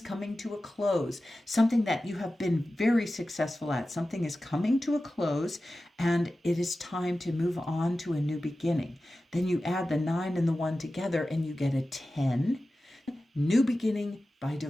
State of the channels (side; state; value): both; normal; correlation 0.94